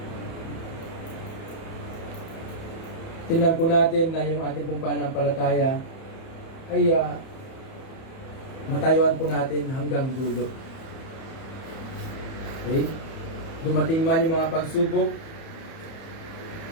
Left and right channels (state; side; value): late; right; 30 ms